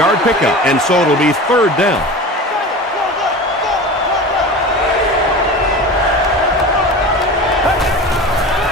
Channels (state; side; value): normal; both; correlation 0.32